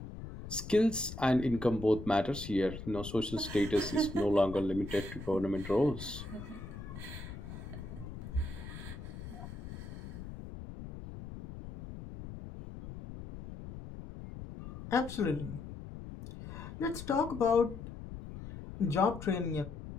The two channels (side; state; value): left; noise; rumble, 11 dB below the sound